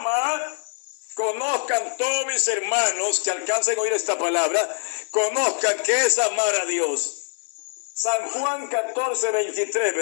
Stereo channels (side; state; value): right; silent; digital silence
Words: conozcan todos mis hermanos que alcancen a oír esta palabra, conozcan que es amar a Dios. San Juan 14, 23,